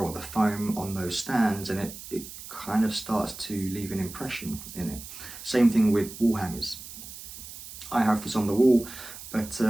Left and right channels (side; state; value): right; noise; hiss, 13 dB below the sound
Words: the foam on those stands, and it kind of starts to leave an impression in it. Same thing with wall hangers. I have this on the wall, but